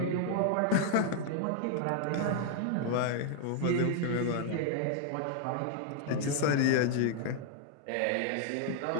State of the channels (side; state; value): both; different; correlation 0.00